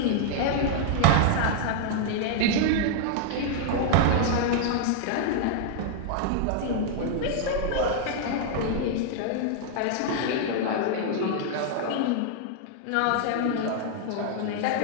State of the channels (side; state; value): both; different; correlation -0.01